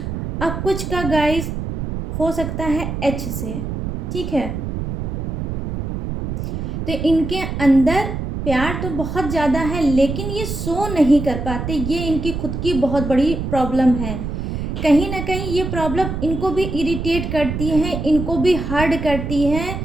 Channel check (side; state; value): right; noise; rumble, 4 dB below the sound